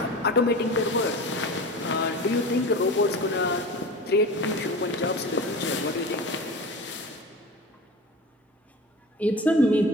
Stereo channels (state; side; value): normal; both; correlation 0.33